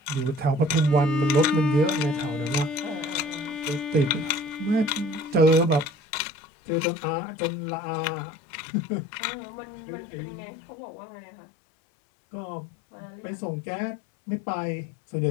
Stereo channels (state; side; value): drops out; right; at 5.9 s